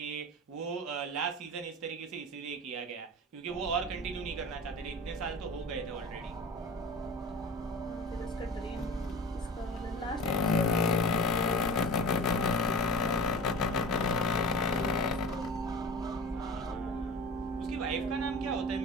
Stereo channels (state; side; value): normal; both; correlation 0.36